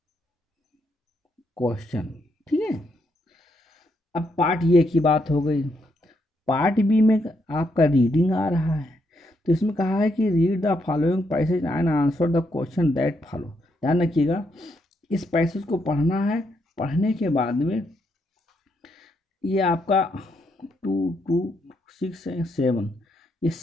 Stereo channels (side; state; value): both; normal; correlation 0.77